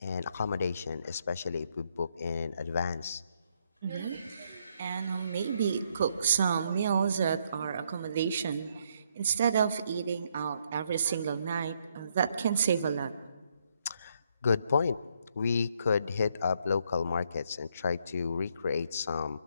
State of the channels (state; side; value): inverted; both; correlation -0.73